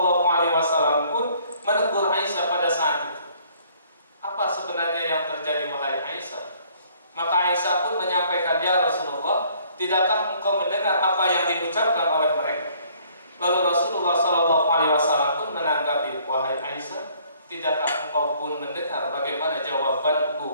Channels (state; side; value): inverted; both; correlation -0.60